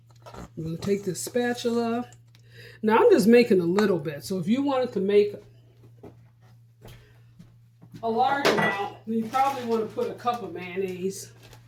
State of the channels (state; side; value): identical; both; correlation 1.00